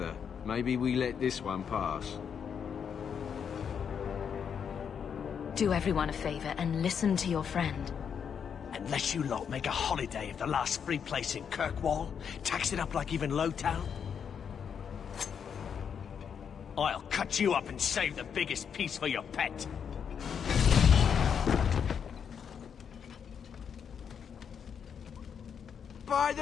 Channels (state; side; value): quieter; right; 7.4 dB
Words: Maybe we let this one pass. Do everyone a favor and listen to your friend. Unless you lot make a holiday of the last free place in Kirkwall, tax it up like even Lowtown, I'll cut you up and save the biggest piece for your pet. By